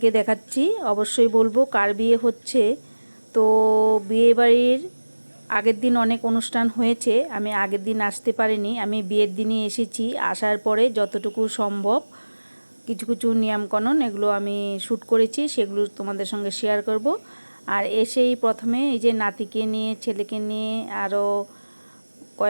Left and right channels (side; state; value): both; inverted; correlation -1.00